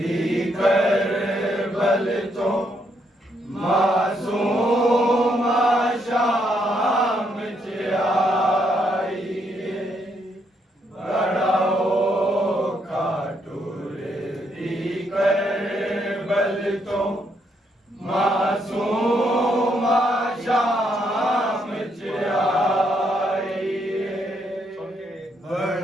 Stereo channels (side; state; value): both; normal; correlation 0.75